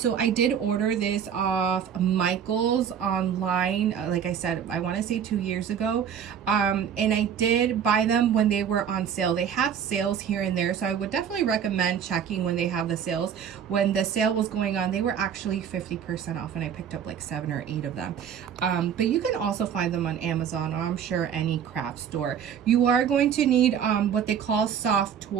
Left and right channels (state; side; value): quieter; left; 8.2 dB